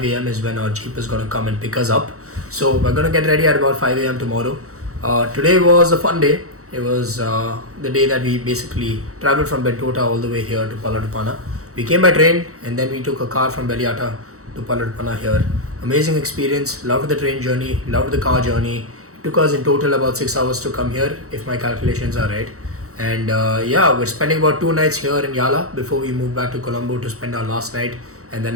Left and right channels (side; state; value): left; late; 0.65 ms